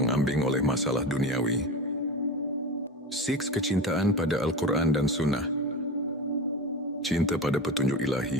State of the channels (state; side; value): normal; both; correlation 0.27